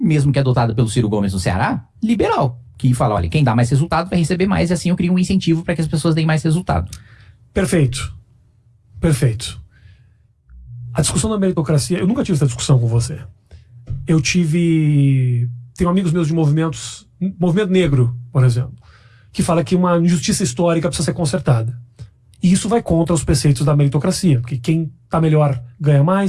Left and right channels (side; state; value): both; identical; correlation 1.00